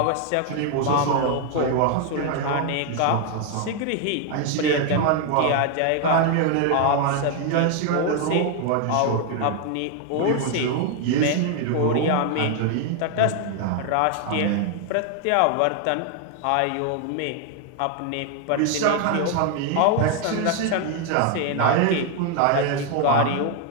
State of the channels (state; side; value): different; both; correlation 0.00